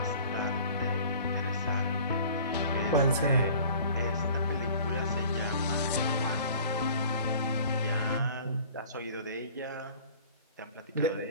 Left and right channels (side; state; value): both; inverted; correlation -0.47